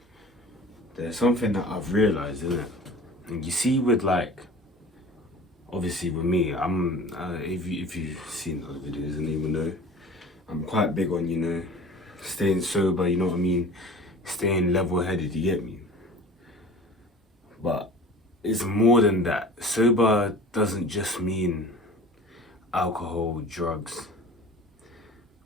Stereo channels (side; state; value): both; normal; correlation 0.41